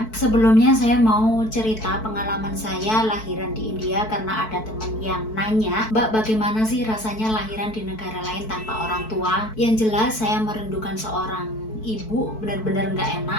Sebelumnya saya mau cerita pengalaman saya lahiran di India, karena ada teman yang nanya, "Mbak, bagaimana sih rasanya lahiran di negara lain tanpa orang tua?" Yang jelas saya merindukan seorang ibu, benar-benar nggak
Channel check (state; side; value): late; right; 4.6 ms